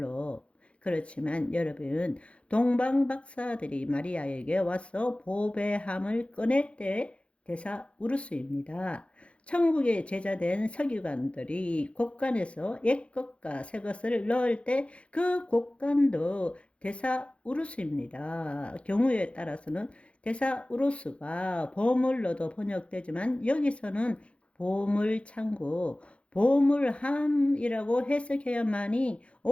그렇지만 여러분, 동방 박사들이 마리아에게 와서 보배함을 꺼낼 때 대사 우루스입니다. 천국의 제자된 서기관들이 곳간에서 옛것과 새것을 넣을 때 그 곳간도 데사우루스입니다. 경우에 따라서는 데사우루스가 보물로도 번역되지만 여기서는 보물창고, 보물함이라고 해석해야만이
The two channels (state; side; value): late; right; 0.061 ms